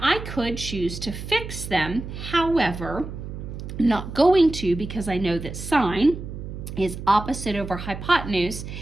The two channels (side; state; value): right; noise; hum, 9 dB below the sound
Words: I could choose to fix them. However, I'm not going to because I know that sine is opposite over hypotenuse,